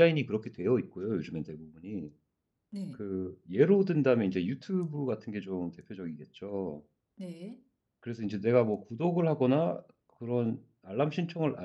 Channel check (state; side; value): identical; both; correlation 1.00